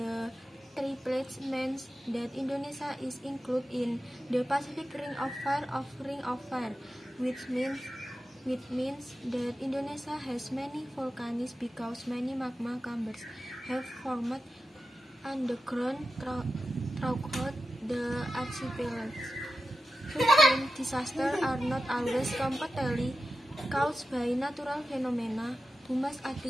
three plates means that Indonesia is included in the Pacific Ring of Fire, which means that Indonesia has many volcanoes because many magma chambers have formed underground throughout the archipelago. Hurricane disasters are not always completely caused by natural phenomena. Human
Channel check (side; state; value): both; normal; correlation 0.93